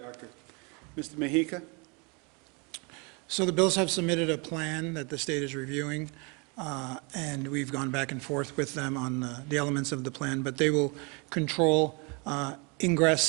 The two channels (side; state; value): left; quieter; 31.6 dB